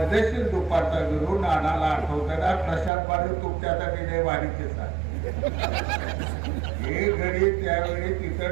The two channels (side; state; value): left; drops out; at 2.9 s